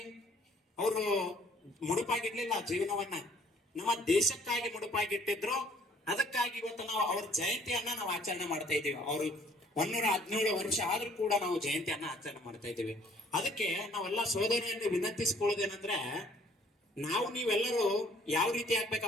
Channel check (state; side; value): normal; both; correlation 0.59